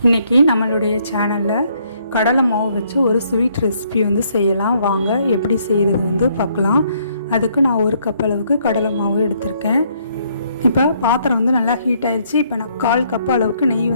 இன்றைக்கி நம்மளுடைய சேனலில் கடலை மாவு வச்சு ஒரு ஸ்வீட் ரெசிபி செய்யலாம். வாங்க எப்படி செய்கிறது பார்க்கலாம். அதுக்கு நான் 1 கப் அளவுக்கு கடலை மாவு எடுத்திருக்கேன். இப்போ பாத்திரம் நல்லா ஹீட் ஆயிடுச்சு. இப்போ நான் 1/4 கப் அளவுக்கு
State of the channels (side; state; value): both; inverted; correlation -0.69